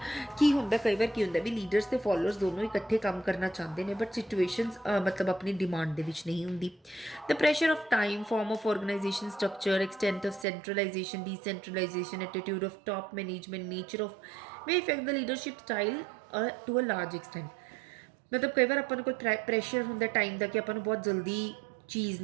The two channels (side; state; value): left; drops out; at 10.5 s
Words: ਕੀ ਹੁੰਦਾ, ਕਈ ਵਾਰ ਕੀ ਹੁੰਦਾ ਵੀ ਲੀਡਰਸ ਤੇ ਫੋਲੋਅਰਸ ਦੋਨੋਂ ਇਕੱਠੇ ਕੰਮ ਕਰਨਾ ਚਾਹੁੰਦੇ ਨੇ ਬਟ ਸਿਚੁਏਸ਼ਨਸ ਮਤਲਬ ਆਪਣੀ ਡਿਮਾਂਡ ਦੇ ਵਿੱਚ ਨਹੀਂ ਹੁੰਦੀ। The pressure of time, form of organisation structure, extent of centralisation, decentralisation, attitude of top management, nature of may affect the leadership style to a large extent। ਮਤਲਬ ਕਈ ਵਾਰ ਆਪਾਂ ਨੂੰ ਕੋਈ ਪ੍ਰੈਸ਼ਰ ਹੁੰਦਾ ਟਾਈਮ ਦਾ ਕਿ ਆਪਾਂ ਨੂੰ ਬਹੁਤ ਜਲਦੀ ਚੀਜ਼